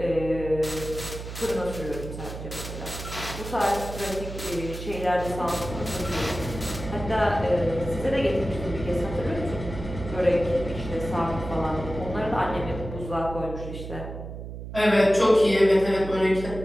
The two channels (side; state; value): right; noise; hum, 9 dB below the sound